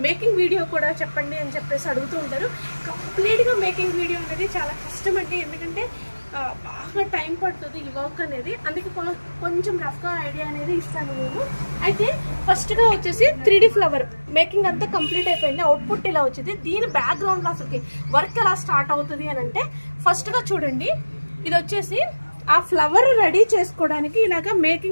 మేకింగ్ వీడియో కూడా చెప్పండి అని చెప్పేసి అడుగుతూ ఉంటారు. కంప్లీట్గా మేకింగ్ వీడియో అనేది చాలా కష్టం అండి, ఎందుకంటే బాగా టైం పడుతుంది ఈ వర్క్ అనేది. అందుకే కొంచెం రఫ్గా ఐడియా అనేది ఇస్తాను నేను. అయితే ఫస్ట్గా వచ్చేసి 3D ఫ్లవర్ మేకింగ్ అంతా కంప్లీట్ అయిపోయింది. అవుట్పుట్ ఇలా వచ్చింది. దీని బ్యాక్గ్రౌండ్లో అసలుకి వర్క్ ఎలా స్టార్ట్ అవుతుంది అని అంటే ఫస్ట్గా చూడండి, ఇది వచ్చేసి ఆ ఫ్లవర్ రెడీ చేసుకోవడానికి ఇలాగ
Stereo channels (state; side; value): inverted; both; correlation -1.00